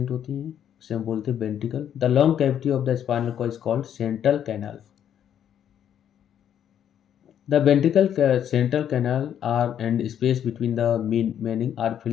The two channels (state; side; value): quieter; right; 9.6 dB